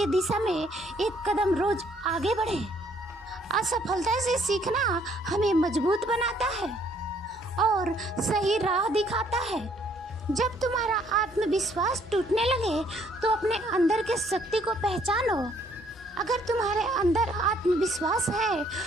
दिशा में एक कदम रोज आगे बढ़े। असफलता से सीखना हमें मजबूत बनाता है और सही राह दिखाता है। जब तुम्हारा आत्मविश्वास टूटने लगे तो अपने अंदर के शक्ति को पहचानो। अगर तुम्हारे अंदर आत्मविश्वास है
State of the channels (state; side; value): normal; both; correlation 0.65